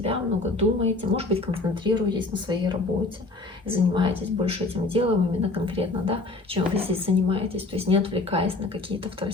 много думаете, может быть, концентрируетесь на своей работе, занимаетесь больше этим делом именно конкретно, да, чем вы здесь занимаетесь, то есть не отвлекаясь на какие-то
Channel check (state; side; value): quieter; right; 3.3 dB